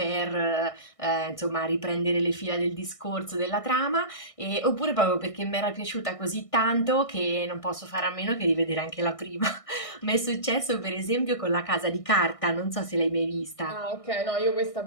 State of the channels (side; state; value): right; late; 1.6 ms